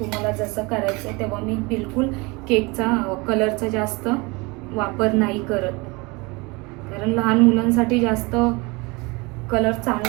जसं करायचं आहे, तेव्हा मी बिलकुल केकचा कलरचा जास्त वापर नाही करत. कारण लहान मुलांसाठी जास्त कलर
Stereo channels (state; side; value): quieter; left; 26.2 dB